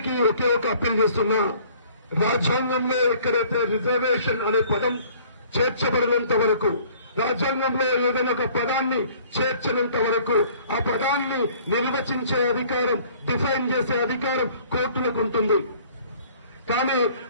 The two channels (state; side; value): inverted; both; correlation -0.54